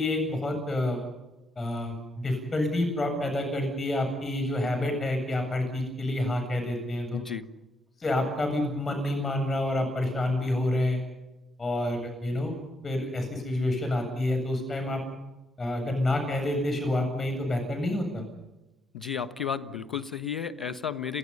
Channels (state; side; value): normal; both; correlation 0.78